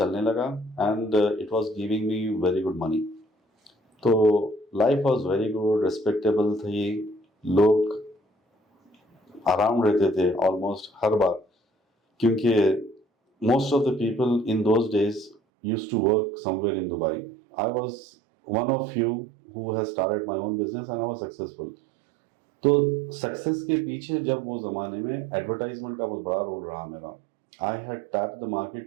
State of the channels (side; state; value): left; drops out; at 15.4 s